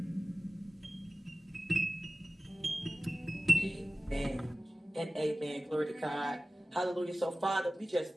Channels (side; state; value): both; normal; correlation 0.97